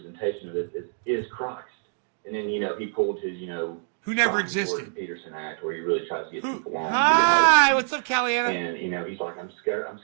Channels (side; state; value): left; silent; digital silence